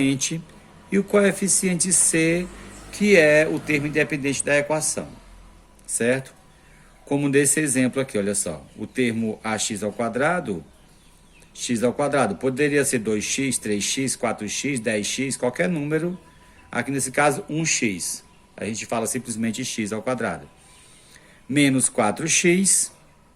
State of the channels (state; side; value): identical; both; correlation 1.00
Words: e o coeficiente C, que é o termo independente da equação, certo? Como nesse exemplo aqui, olha só, o termo ax ao quadrado, x ao quadrado, poderia ser 2x, 3x, 4x, 10x, qualquer número, aqui nesse caso 1x, a gente fala simplesmente x ao quadrado. Menos 4x,